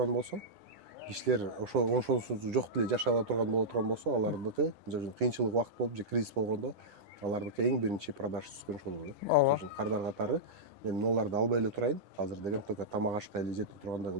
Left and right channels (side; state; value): left; late; 9.8 ms